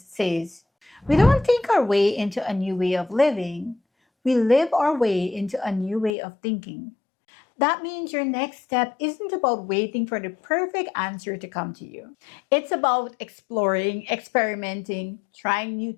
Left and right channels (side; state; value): right; drops out; at 6.2 s